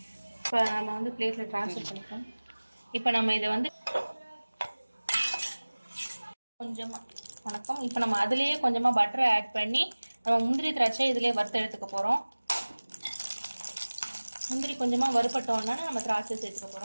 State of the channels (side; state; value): both; inverted; correlation -1.00